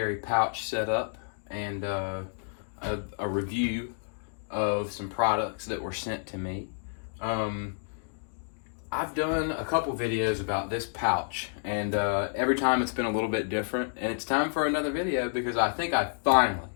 pouch setup and a review of some products that were sent to me. I've done a couple videos about this pouch, and every time it's been a little bit different, and it's time for another video because I think I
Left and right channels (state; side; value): silent; right; digital silence